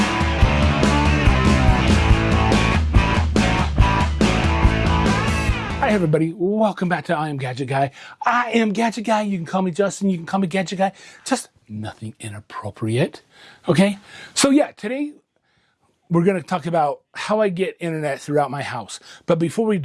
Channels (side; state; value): both; identical; correlation 1.00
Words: Hi everybody, welcome back to I Am Gadget Guy. I am Gadget Guy. You can call me Justin, you can call me Gadget Guy. Just nothing inappropriate, okay? So yeah, today we're gonna talk about how I get internet throughout my house. But before we